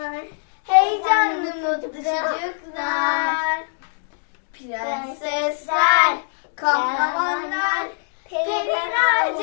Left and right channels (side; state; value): right; silent; digital silence